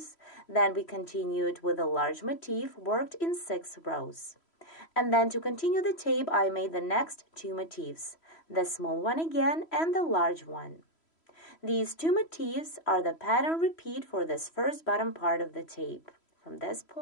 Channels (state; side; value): late; right; 3.1 ms